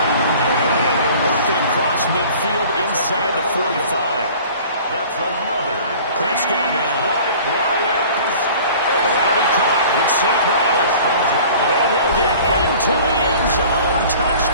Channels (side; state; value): both; inverted; correlation -0.46